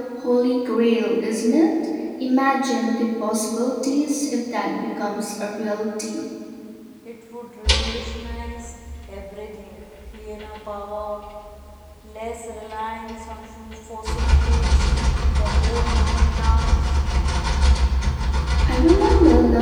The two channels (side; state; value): both; identical; correlation 1.00